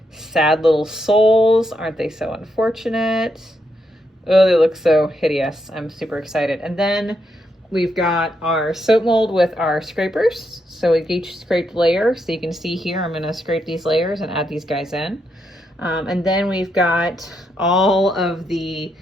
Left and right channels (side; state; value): both; normal; correlation 0.80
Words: sad little souls. Aren't they so unfortunate? Oh, they look so hideous. I'm super excited. And then we've got our soap mold with our scrapers. So we each scraped layer. So you can see here, I'm gonna scrape these layers and add these guys in. And then we've got all of the